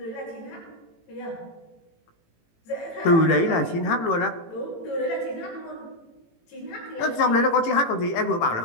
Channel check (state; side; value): late; right; 18 ms